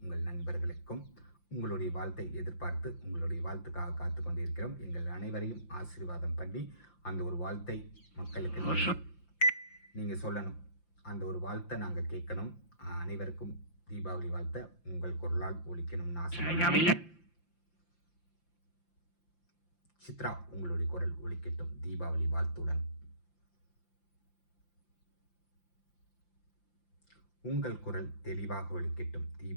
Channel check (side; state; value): right; late; 5.8 ms